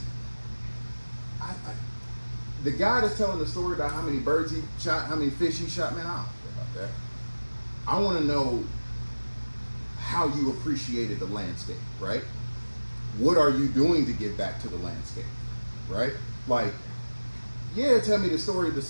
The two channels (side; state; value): both; inverted; correlation -1.00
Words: the guy that's telling the story about how many birds he shot, how many fish he shot, man, I don't care about that. I want to know how you appreciated the landscape, right? What are you doing to give back to the landscape? right? Like, yeah, tell me the story of the